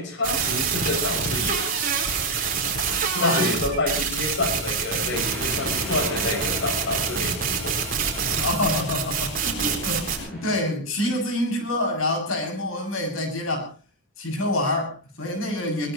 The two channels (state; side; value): normal; both; correlation 0.02